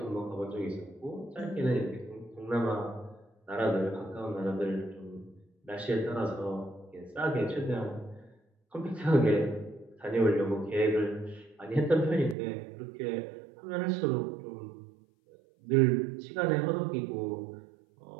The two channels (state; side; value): drops out; left; at 12.4 s